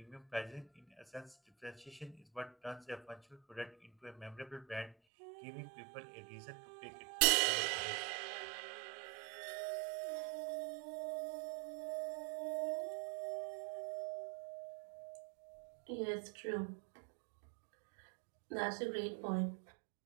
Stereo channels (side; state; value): left; drops out; at 5.0 s